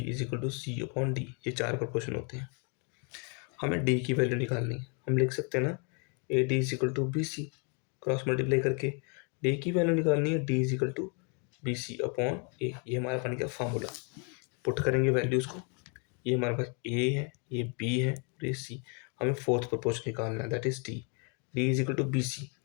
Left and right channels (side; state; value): right; quieter; 36.6 dB